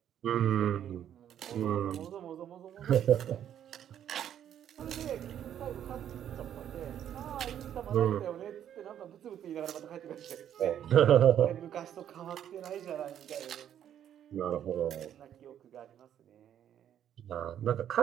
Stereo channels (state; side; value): quieter; left; 10.1 dB